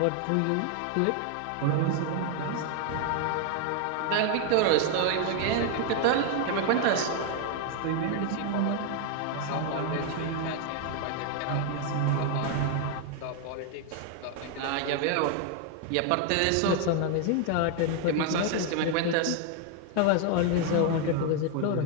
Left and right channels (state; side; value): different; both; correlation 0.01